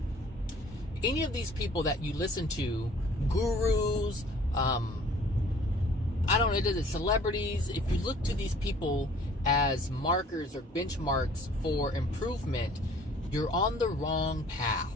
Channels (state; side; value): normal; both; correlation 0.53